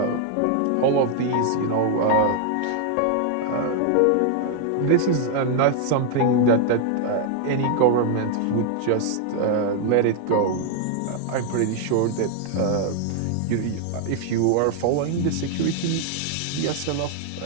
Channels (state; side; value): different; both; correlation 0.00